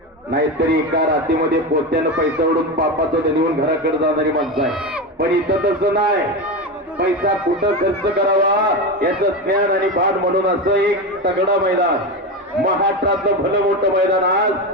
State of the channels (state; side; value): normal; both; correlation 0.18